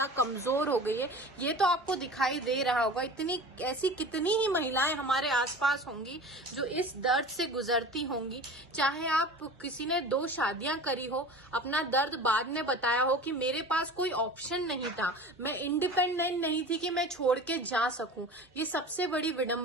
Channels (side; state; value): both; normal; correlation 0.37